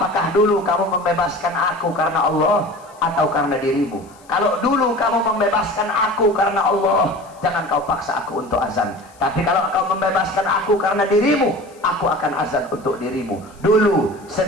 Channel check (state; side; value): noise; left; hiss, 28 dB below the sound